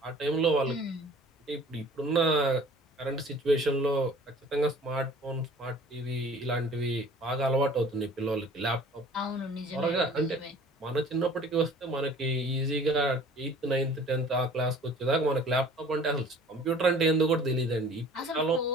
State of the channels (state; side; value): normal; both; correlation 0.49